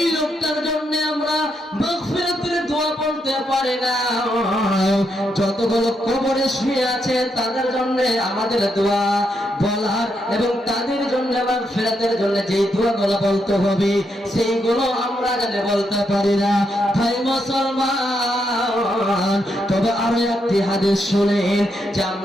লোকটার জন্য আমরা মাগফিরাতের দোয়া বলতে পারি না। যতগুলো কবরে শুয়ে আছে তাদের জন্য আমাদের দোয়া বলার এবং তাদের জন্য মাগফিরাতের জন্য যেই দোয়াগুলো বলতে হবে, সেইগুলো আমরা জানে বলতে পারি না। ভাই মুসলমান, তবে আরো একটি হাদিস শুনেন, যে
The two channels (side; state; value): both; normal; correlation 0.80